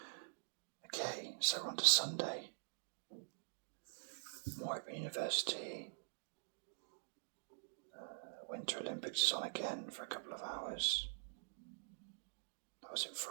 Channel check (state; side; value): silent; left; digital silence